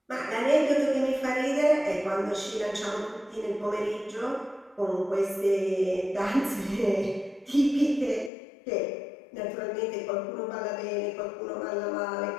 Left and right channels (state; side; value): drops out; right; at 8.3 s